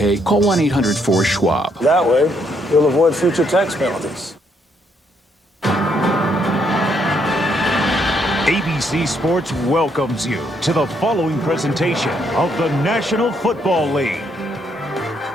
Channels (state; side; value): normal; both; correlation 0.73